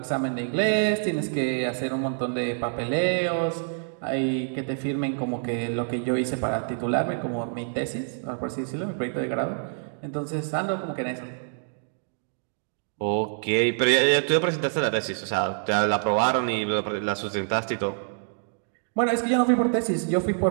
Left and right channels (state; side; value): silent; left; digital silence